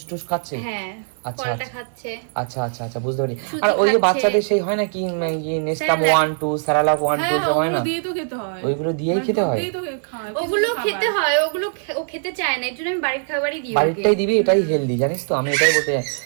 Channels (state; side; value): silent; left; 55 dB below the other